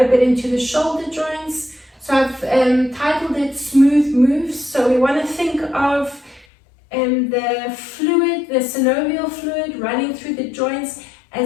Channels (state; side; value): drops out; right; at 6.5 s